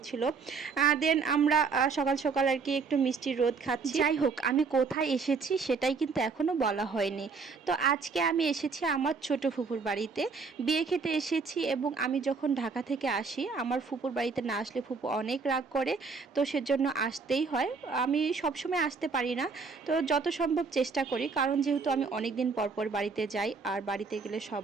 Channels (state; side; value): quieter; left; 4.8 dB